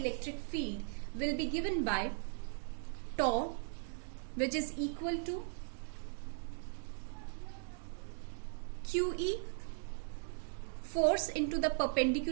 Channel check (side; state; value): left; silent; digital silence